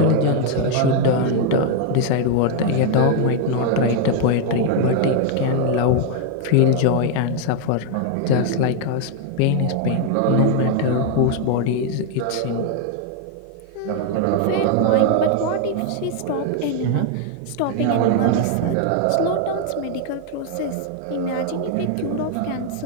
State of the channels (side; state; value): both; different; correlation 0.00